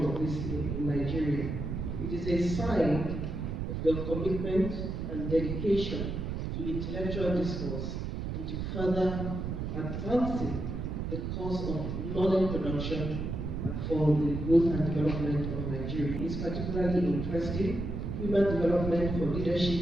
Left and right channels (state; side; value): noise; right; rumble, 4 dB below the sound